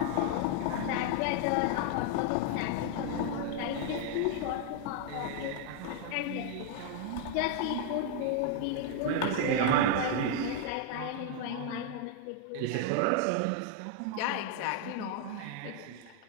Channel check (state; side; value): different; both; correlation 0.00